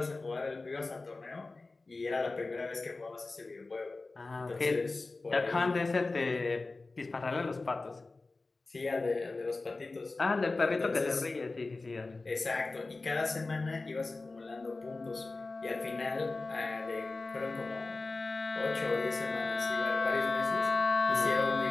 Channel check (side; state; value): right; quieter; 3.5 dB